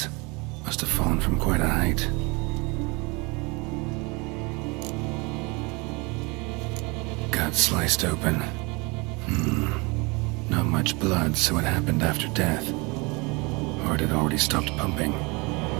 Must have fallen from quite a height. Gut sliced open. Not much blood, so it happened after death. Heart had already stopped pumping.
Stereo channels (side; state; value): left; quieter; 27.5 dB